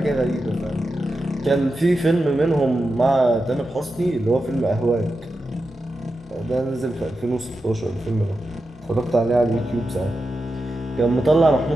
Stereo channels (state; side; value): normal; both; correlation 0.90